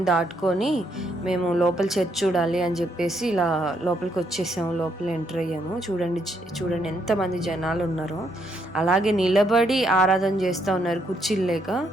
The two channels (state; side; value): normal; both; correlation 0.74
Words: దాటుకొని మేము లోపల చర్చ్ చూడాలి అని చెప్పేసి ఇలా లోపలికి వచ్చేసాము. లోపల ఎంటర్ అయ్యాము. చూడండి ఎంతమంది జనాలు ఉన్నారో. అలాగే నిలబడి ఆరాధన చేస్తూ ఉన్నారు, కుర్చీలు లేక,